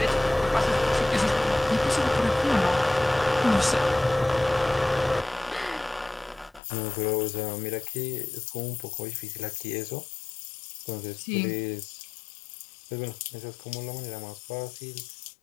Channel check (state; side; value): drops out; right; at 6.6 s